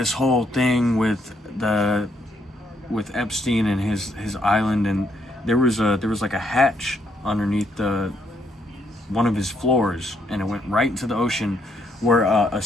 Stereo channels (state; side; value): normal; both; correlation 0.73